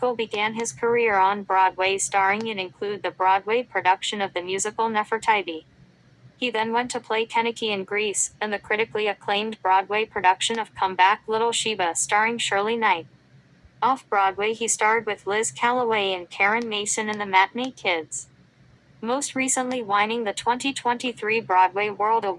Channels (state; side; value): identical; both; correlation 1.00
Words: began his career on Broadway starring in include the Broadway production of the musical Nefertiti. He then went to play Keniki in Grease, and the critically acclaimed Broadway production of Come Back Little Sheba starring Shirley Knight. Off-Broadway he starred with Liz Callaway and Karen Mason in The Matinee Kids. Most recently winning the 2023 Broadway World